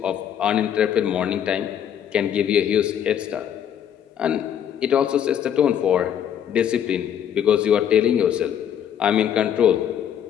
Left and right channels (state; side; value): quieter; right; 9.3 dB